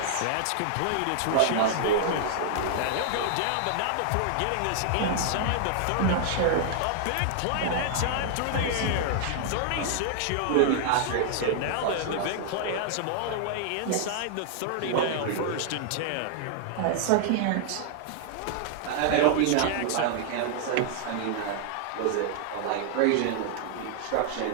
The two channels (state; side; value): different; both; correlation -0.01